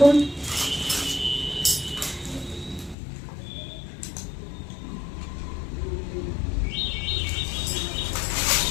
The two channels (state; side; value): drops out; right; at 3.0 s